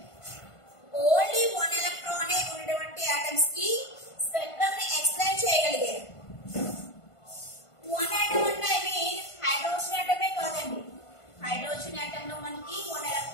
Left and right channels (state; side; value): late; right; 1.5 ms